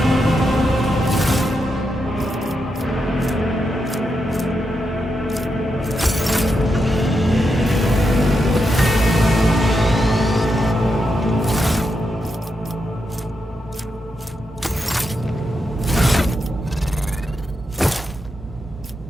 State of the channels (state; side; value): normal; both; correlation 0.85